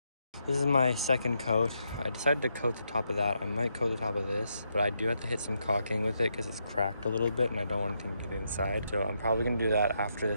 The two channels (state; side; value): inverted; both; correlation -0.80